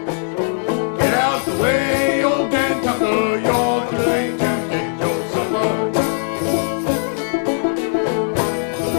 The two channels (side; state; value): right; silent; 66 dB below the other